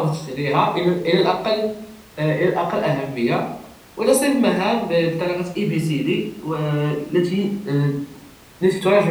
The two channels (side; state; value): both; identical; correlation 1.00